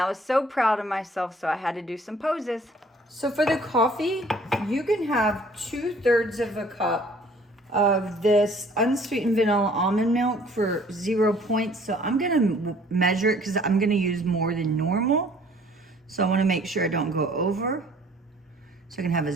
was so proud of myself, so I had to do some poses. So for the coffee, you can have 2/3 of a cup of this unsweetened vanilla almond milk for 0 points. So I'm gonna measure it because I'm gonna use more than normal. So I wanna make sure I don't go over. So I can have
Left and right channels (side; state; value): both; normal; correlation 0.56